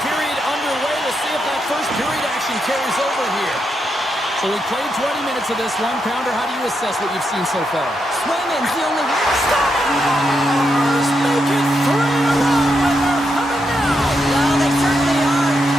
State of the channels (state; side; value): normal; both; correlation 0.83